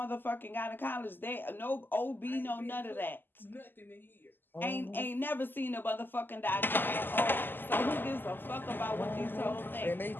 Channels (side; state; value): right; late; 0.093 ms